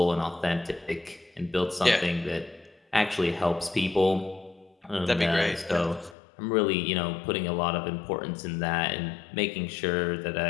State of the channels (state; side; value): drops out; right; at 6.2 s